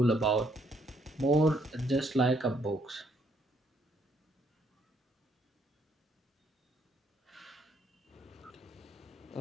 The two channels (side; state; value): both; normal; correlation 0.70